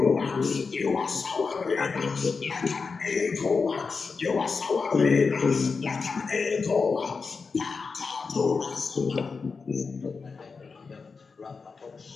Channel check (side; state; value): right; quieter; 4.8 dB